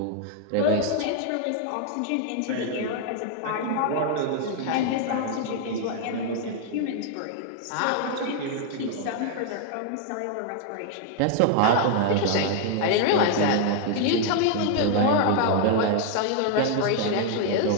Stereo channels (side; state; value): both; different; correlation 0.00